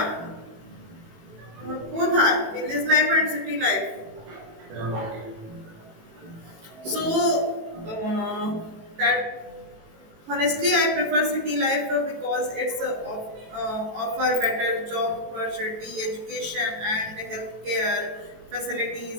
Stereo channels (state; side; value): late; left; 18 ms